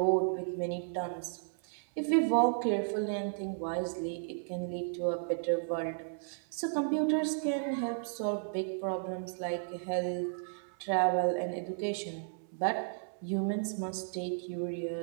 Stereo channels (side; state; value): left; silent; 55 dB below the other